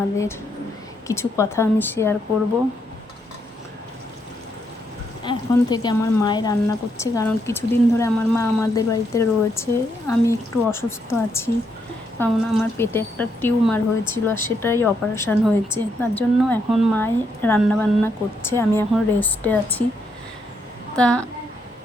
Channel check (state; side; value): normal; both; correlation 0.77